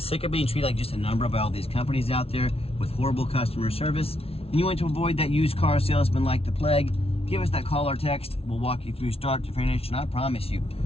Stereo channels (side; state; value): right; late; 0.28 ms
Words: of being treated like just a number by all these companies out there with horrible customer service, and you want to avoid that used car salesman like the plague, give us that call or text. We'll walk you through start to finish, and I promise you,